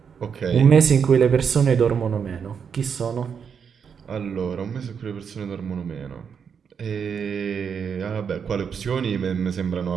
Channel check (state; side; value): quieter; left; 6.9 dB